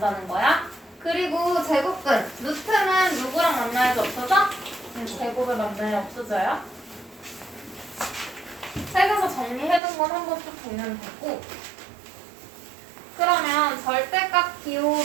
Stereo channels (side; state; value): left; drops out; at 9.8 s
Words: 거야. 그리고 제곱근, 루트는 누구랑 만나야지 없어져? 제곱을 만나야 없어져요. 책에서 정리해둔 건 한번 쭉 보면 되고, 그러면 절대값